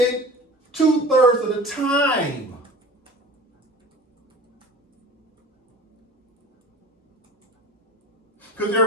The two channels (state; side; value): normal; both; correlation 0.40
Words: 2/3 of the time. because